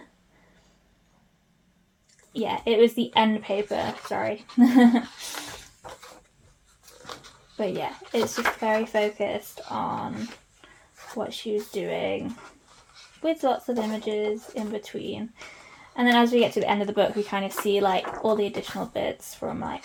Yeah, it was the end paper, sorry. But yeah, it's just very focused on what she was doing, with lots of images in between. And then as we get to the end of the book, we kind of see like all the additional bits from like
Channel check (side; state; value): both; identical; correlation 1.00